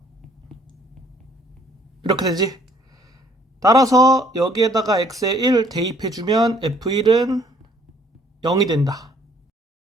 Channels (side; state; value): both; normal; correlation 0.61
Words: 이렇게 되지? 따라서 여기에다가 x에 1 대입해주면 f1은 0이 된다.